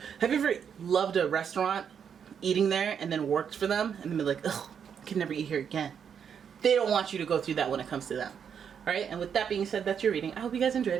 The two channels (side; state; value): left; quieter; 7.6 dB